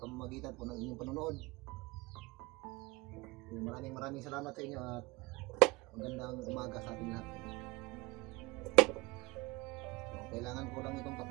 pamamagitan po ng inyong panonood. Maraming salamat sa inyo at magandang umaga sa ating lahat. Kailangan ko lang itong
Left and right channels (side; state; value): left; quieter; 22.8 dB